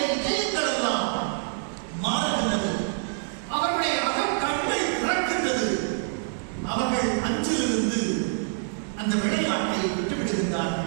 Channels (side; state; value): left; silent; digital silence